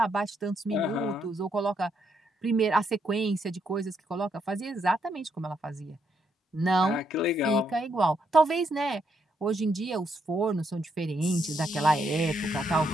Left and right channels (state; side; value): normal; both; correlation 0.76